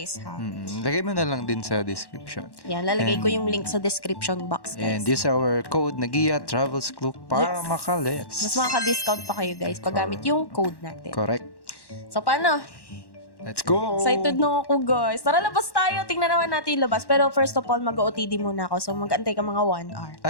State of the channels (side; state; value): right; late; 1.1 ms